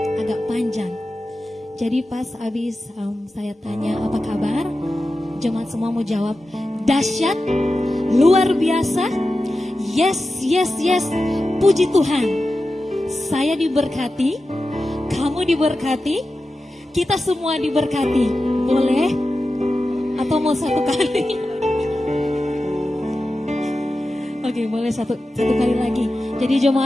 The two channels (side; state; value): both; normal; correlation 0.93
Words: agak panjang. Jadi pas habis saya tanya apa kabar, jemaat semua mau jawab dahsyat, luar biasa, yes, yes, yes. Puji Tuhan. Saya diberkati, kamu diberkati, kita semua diberkati. Boleh? Atau mau satu kali? Oke, boleh satu kali lagi. Jadi